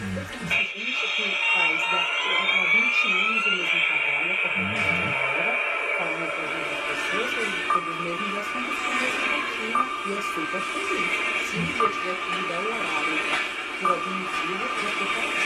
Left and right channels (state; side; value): identical; both; correlation 1.00